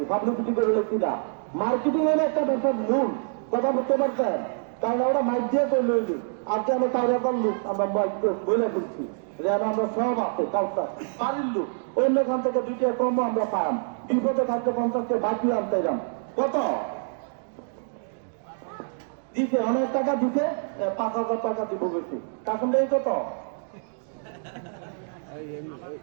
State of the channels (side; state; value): left; silent; digital silence